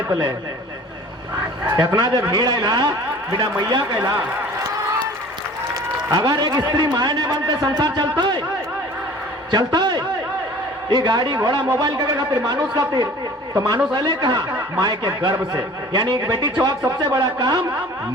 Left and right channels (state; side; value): normal; both; correlation 0.46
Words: पले इतना जब भीड़ आयला बिना मैया कहला। अगर एक स्त्री माए नहीं बनते संसार चलता है ये गाड़ी घोड़ा मोबाइल के खातिर मानुष खातिर, तो मानुष अले कहा माए के गर्भ से। यानी एक बेटी छुआक सबसे बड़ा काम